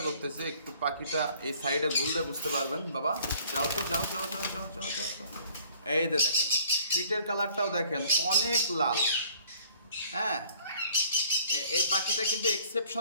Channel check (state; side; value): inverted; both; correlation -0.56